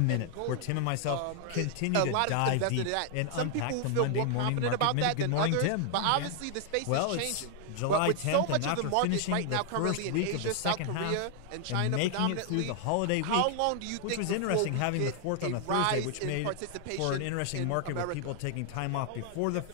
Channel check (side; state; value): both; different; correlation 0.00